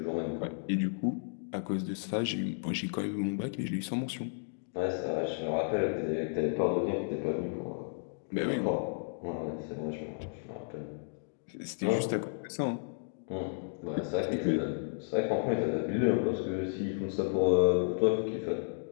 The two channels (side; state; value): right; silent; digital silence